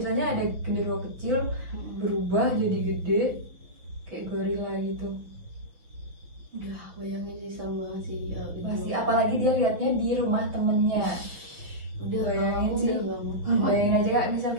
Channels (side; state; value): left; late; 6.0 ms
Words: ada genderuwo kecil berubah jadi gede kayak gorila gitu. Udah bayangin sih sama banget sih Pasti, apalagi dia lihatnya di rumah temennya. Udah Bayangin sih. udah gak mau. Bayangin aja Kak, misal